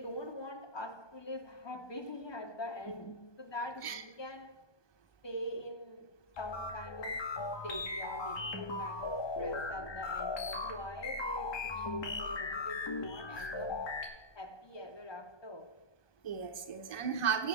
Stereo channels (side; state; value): right; late; 1.2 ms